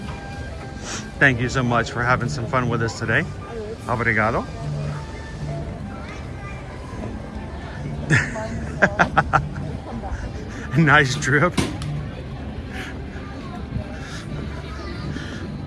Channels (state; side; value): identical; both; correlation 1.00